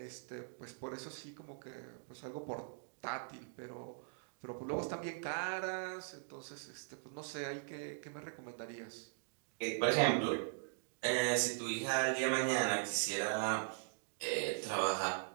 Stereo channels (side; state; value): left; silent; digital silence